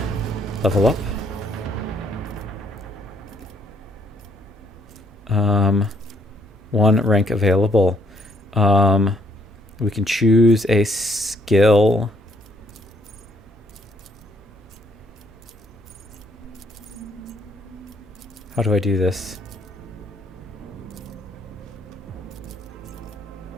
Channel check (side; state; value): both; normal; correlation 0.69